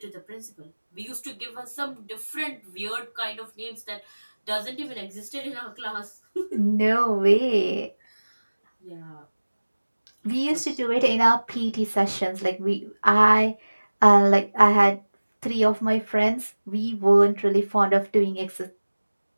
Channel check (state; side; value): inverted; both; correlation -1.00